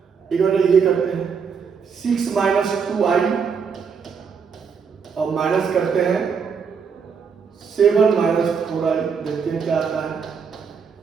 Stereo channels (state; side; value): quieter; left; 6.1 dB